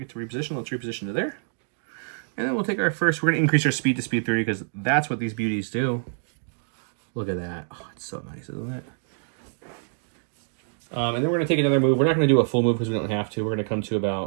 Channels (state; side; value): silent; left; digital silence